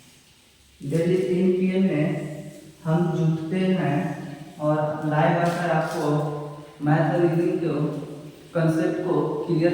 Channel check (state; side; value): identical; both; correlation 1.00